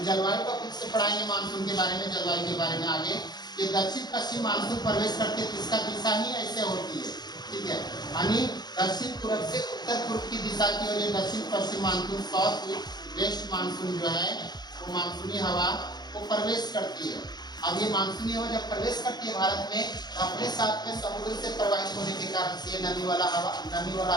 जलवायु का कुछ से पढ़ाएंगे मानसून के बारे में, जलवायु के बारे में आगे। ये दक्षिण पश्चिम मानसून प्रवेश करके इसका दिशा ही ऐसे होती है। ठीक है, यानी दक्षिण पूर्व से उत्तर पूर्व की दिशा की ओर ये दक्षिण पश्चिम मानसून, साउथ वेस्ट मानसून जो है वो मानसूनी हवा वो प्रवेश करती है। अब ये मानसूनी हवा जब प्रवेश करती है भारत में, अपने साथ में समुद्र से प्रवाहित होने के कारण से नमी वाला हवा,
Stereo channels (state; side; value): late; right; 0.20 ms